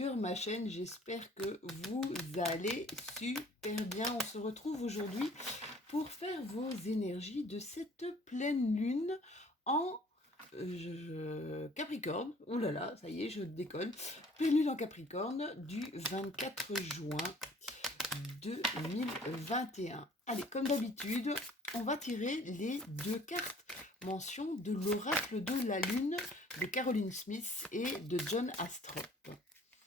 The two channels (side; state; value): both; normal; correlation 0.54